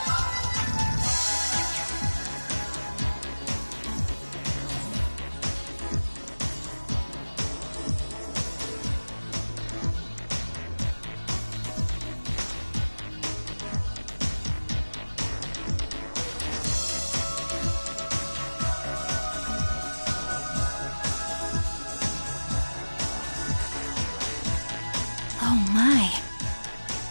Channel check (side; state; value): both; inverted; correlation -1.00